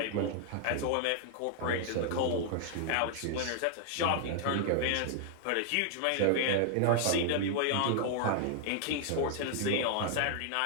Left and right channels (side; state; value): both; different; correlation 0.00